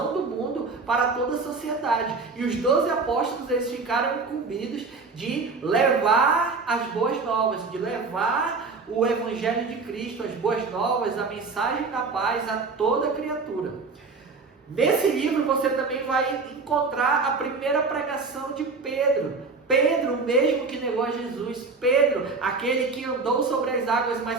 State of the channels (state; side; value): quieter; left; 4.2 dB